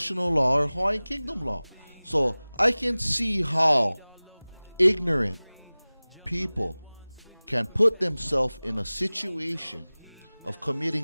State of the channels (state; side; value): inverted; both; correlation -0.99